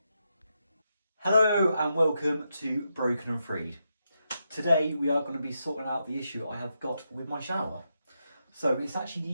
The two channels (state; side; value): inverted; both; correlation -0.84